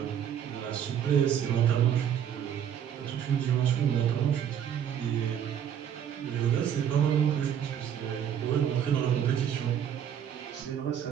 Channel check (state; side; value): quieter; left; 9.2 dB